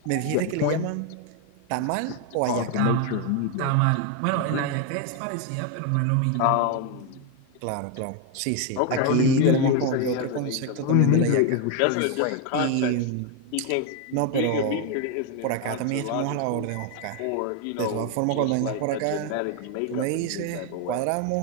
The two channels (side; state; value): both; different; correlation 0.01